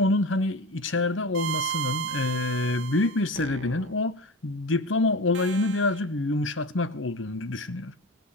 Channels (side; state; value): both; normal; correlation 0.29